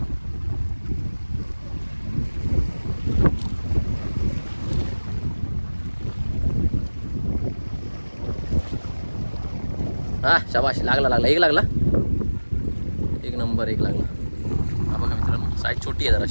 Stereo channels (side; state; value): both; inverted; correlation -1.00